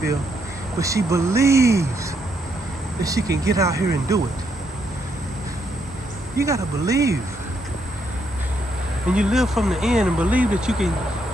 but she believes that she can get out here and do it. You gotta believe, and you live from the end and believe that you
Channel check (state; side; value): normal; both; correlation 0.76